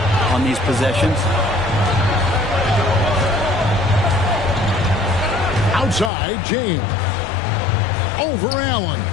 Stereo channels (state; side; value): drops out; right; at 6.1 s